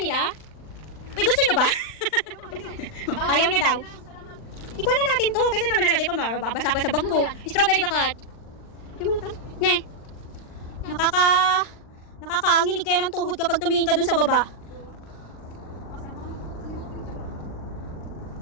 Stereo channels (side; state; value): right; late; 39 ms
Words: Uy, gusto nyo ba? Ayaw niya daw. Ikuha na natin to. Kaysa naman lalagay pa, mababasa pa sa bag Ano ko. ba yan? Strawberry bakat. Yung mga tan. Ne. Nakakaanginig kaya ng tuhod kapag tumingin ka dun sa baba.